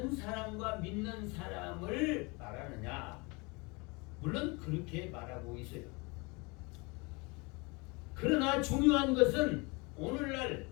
사람과 믿는 사람을 말하느냐? 물론 그렇게 말하고 있어요. 그러나 중요한 것은 오늘날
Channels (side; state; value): right; quieter; 27.8 dB